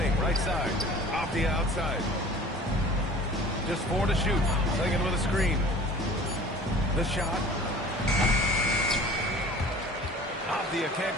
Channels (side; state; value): both; normal; correlation 0.45